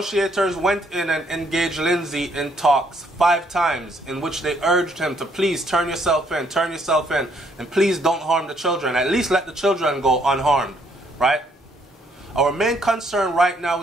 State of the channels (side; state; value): both; normal; correlation 0.69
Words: went in and engaged Lindsay in talks 5 times, in which they urged him to please turn yourself in, and please don't harm the children. At least let the children go unharmed, right? Our main concern right now